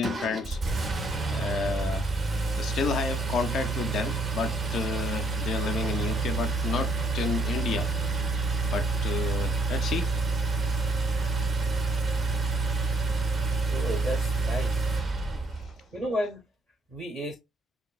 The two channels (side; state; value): both; normal; correlation 0.66